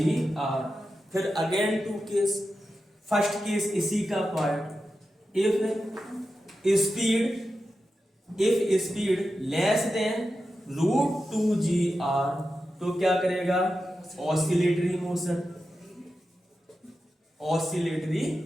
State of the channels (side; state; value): both; normal; correlation 0.91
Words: फिर again two case, first case इसी का part, if speed less than √2gr, तो क्या करेगा, ऑसिलेटरी मोशन, ऑसिलेटरी